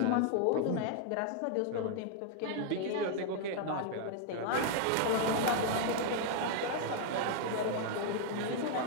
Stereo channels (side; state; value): both; different; correlation 0.00